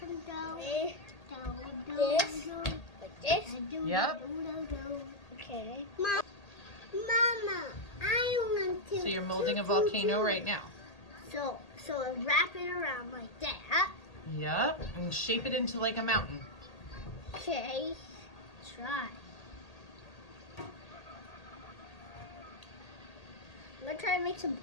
dough? This. Like this. Yep. Okay. Mama, I want to. So you're molding a volcano right now. So wrap it around like that. Yep, and shape it into like a mountain. Okay. Try. I'm gonna try to make some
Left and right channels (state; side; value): late; right; 1.8 ms